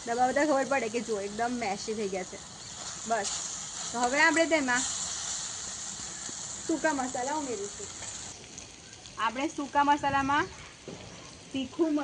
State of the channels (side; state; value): both; identical; correlation 1.00